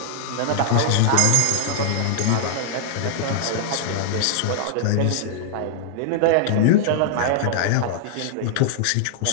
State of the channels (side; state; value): both; different; correlation -0.01